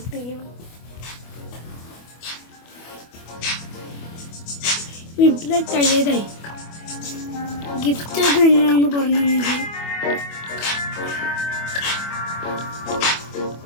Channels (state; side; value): late; right; 25 ms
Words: വീട്ടിലെ കഴിയതായി ഗിഫ്റ്റ് ഒക്കെ എങ്ങനെയാണെന്ന് പറഞ്ഞെങ്കിൽ